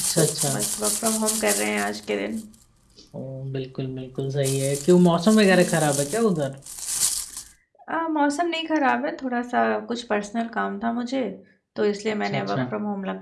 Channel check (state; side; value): identical; both; correlation 1.00